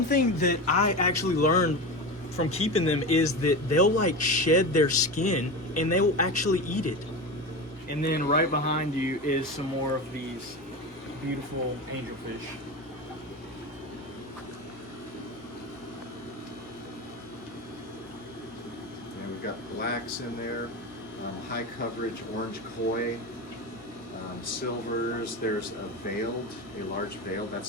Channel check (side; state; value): both; normal; correlation 0.23